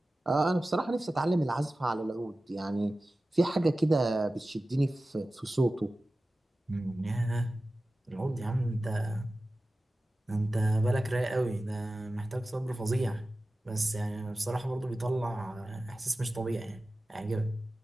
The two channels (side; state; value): both; normal; correlation 0.95